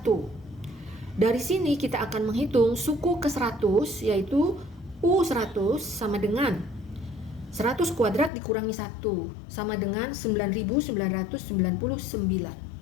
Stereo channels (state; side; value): drops out; right; at 8.3 s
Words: Dari sini kita akan menghitung suku ke 100 yaitu U100 sama dengan 100 kuadrat dikurangi 1 sama dengan 9.999.